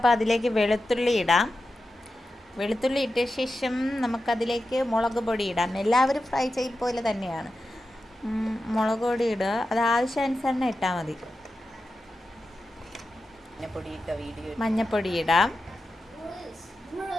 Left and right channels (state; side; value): normal; both; correlation 0.91